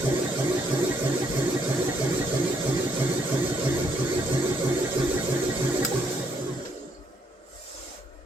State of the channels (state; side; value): normal; both; correlation 0.72